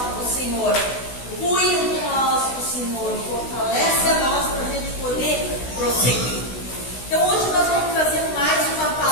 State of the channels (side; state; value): right; late; 16 ms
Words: o Senhor cuida de nós, o Senhor fortalece a nós para a gente poder prosseguir. Então, hoje nós vamos trazer mais uma